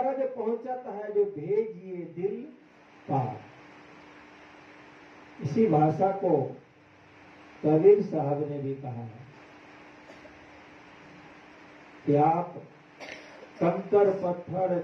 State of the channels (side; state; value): both; identical; correlation 1.00